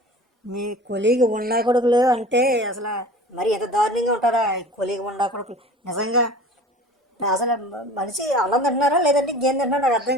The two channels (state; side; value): normal; both; correlation 0.41